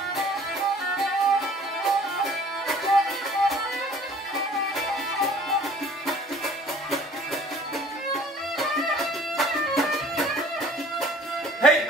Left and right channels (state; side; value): normal; both; correlation 0.51